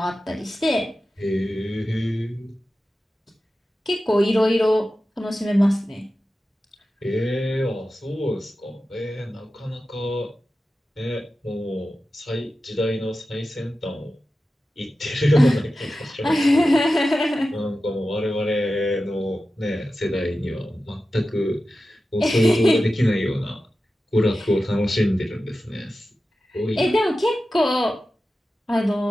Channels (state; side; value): normal; both; correlation 0.93